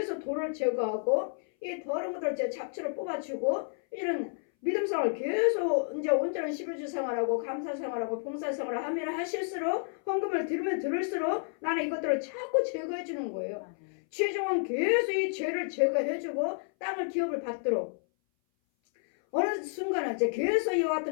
돌을 제거하고 이 더러운 것들을 잡초를 뽑아주고 이런 믿음 생활을 계속 이제 온전한 11주 생활하고 감사 생활하고 봉사 생활을 하면 하실수록 헌금을 들으면 들을수록 나는 이것들을 자꾸 제거해 주는 거예요. 최종은 계속 이 죄를 제거해주고 땅을 기업을 받도록 어느 순간은 이제 계속 이와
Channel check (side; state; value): right; silent; 57 dB below the other